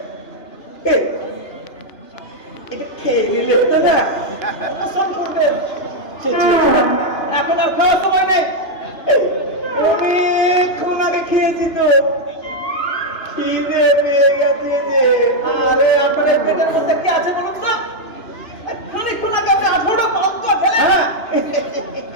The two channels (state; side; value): late; right; 2.9 ms